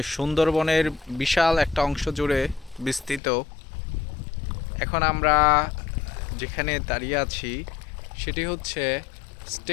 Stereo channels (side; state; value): right; drops out; at 3.2 s